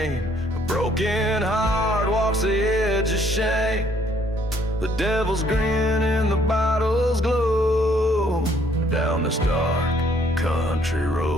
A broken heart walks the edge of shame. The devil's grin and the bottle's glow. Down this dark country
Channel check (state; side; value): normal; both; correlation 0.64